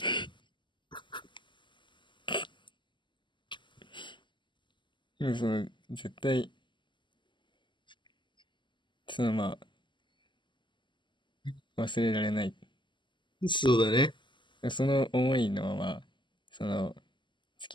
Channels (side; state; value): right; late; 0.23 ms